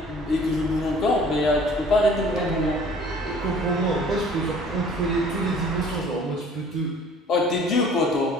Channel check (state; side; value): normal; both; correlation 0.51